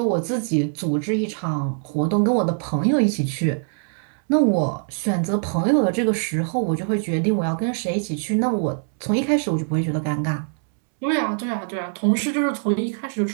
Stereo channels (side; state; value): left; silent; 64 dB below the other